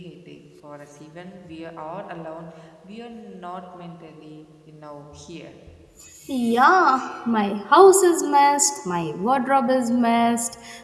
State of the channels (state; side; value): identical; both; correlation 1.00